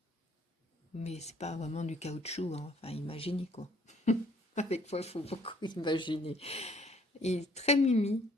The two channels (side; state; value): both; normal; correlation 0.62